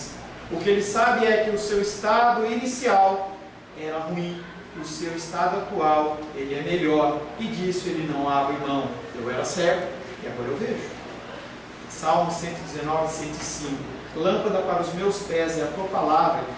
O que ele sabe é que o seu estado inicial era ruim, o seu estado atual ele é melhor, e disso ele não abre mão. Eu era cego e agora eu vejo. Salmo 119, 105. Lâmpada para os meus pés é a tua palavra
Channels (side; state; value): both; identical; correlation 1.00